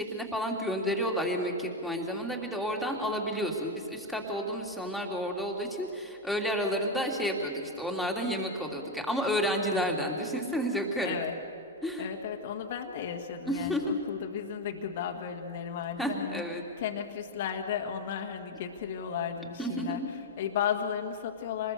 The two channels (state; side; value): normal; both; correlation 0.09